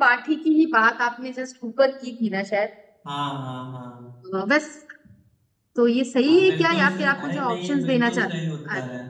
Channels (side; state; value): both; identical; correlation 1.00